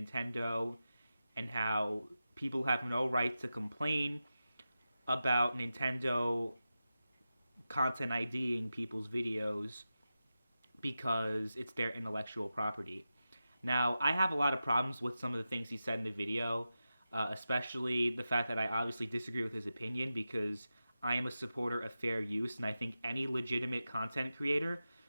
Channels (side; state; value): both; inverted; correlation -0.92